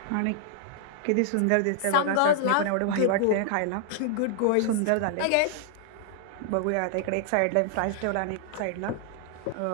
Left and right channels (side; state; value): both; different; correlation -0.01